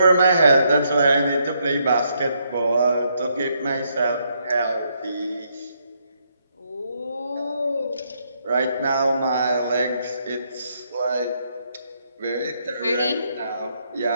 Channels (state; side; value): inverted; both; correlation -0.75